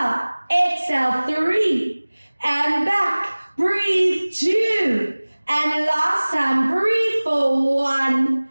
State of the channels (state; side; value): inverted; both; correlation -1.00